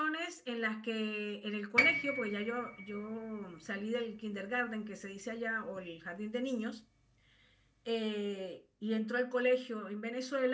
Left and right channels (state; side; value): identical; both; correlation 1.00